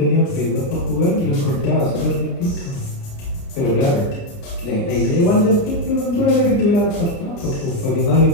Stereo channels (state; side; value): late; right; 29 ms